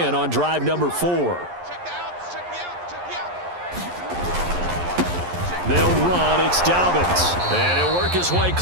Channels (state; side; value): late; left; 11 ms